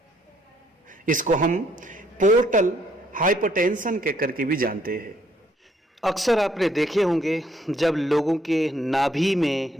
इसको हम पोर्टल हाइपरटेंशन के करके भी जानते हैं। अक्सर आपने देखे होंगे जब लोगों के नाभि में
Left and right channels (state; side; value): normal; both; correlation 0.68